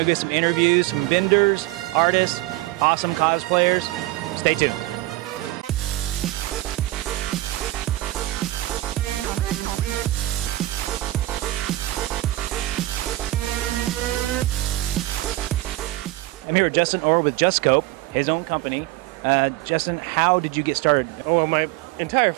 get some interviews, some vendors, artists, awesome cosplayers. Stay tuned. I'm here with Justin Orr with Just Scope, his own company. Justin, how did you get started? Oh, well, my entire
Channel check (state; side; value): quieter; left; 17.5 dB